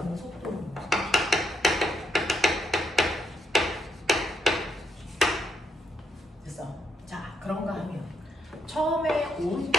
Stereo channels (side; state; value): both; normal; correlation 0.78